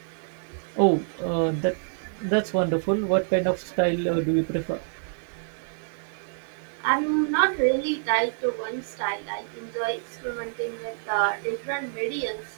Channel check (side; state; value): left; silent; digital silence